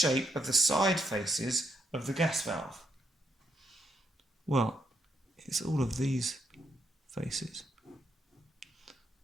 of the side faces of the gas valve? Well, it's all of these faces,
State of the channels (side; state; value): both; normal; correlation 0.76